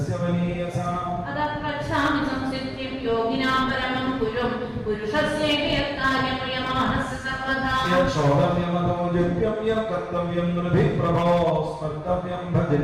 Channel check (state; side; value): identical; both; correlation 1.00